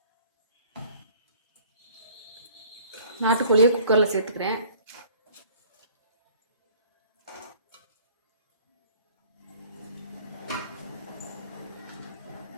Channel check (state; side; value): inverted; both; correlation -0.51